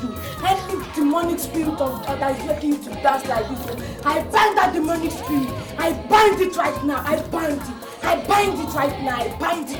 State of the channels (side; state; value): both; identical; correlation 1.00